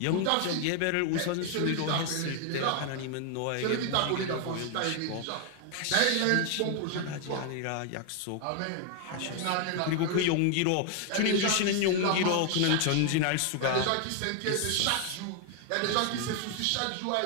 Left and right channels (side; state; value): both; different; correlation 0.00